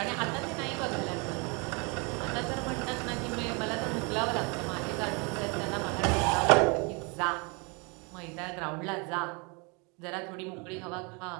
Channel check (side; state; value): left; quieter; 31.0 dB